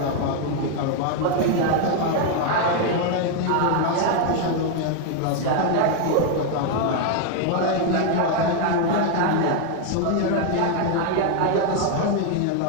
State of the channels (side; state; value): both; different; correlation 0.01